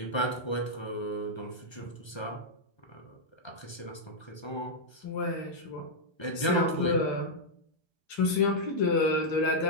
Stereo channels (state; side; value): late; right; 1.3 ms